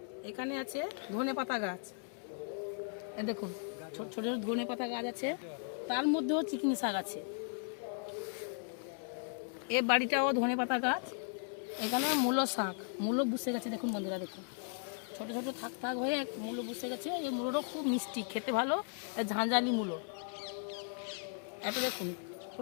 এখানে আছে ধনে পাতা গাছ, এ দেখুন ছোট ছোট ধনে পাতা গাছ আছে, তার মধ্যেও চিকনি শাক আছে। এ বাড়িটাও ধনে পাতা গাছ। এখানে মূলো শাক, মূলো বসে গেছে দেখুন বন্ধুরা, দেখুন ছোট ছোট থাক থাক হয়ে মূলো বসে গেছে। এই মূলোটা খুব মিষ্টি, খেতে ভালো, ঝাঁঝালি মূলো। এটা দেখুন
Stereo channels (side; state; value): right; silent; 53 dB below the other